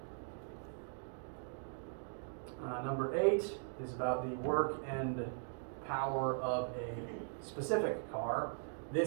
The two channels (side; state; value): left; silent; digital silence